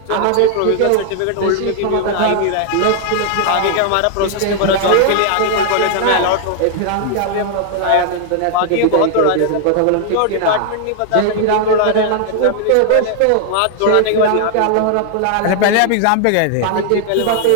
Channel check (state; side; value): different; both; correlation 0.00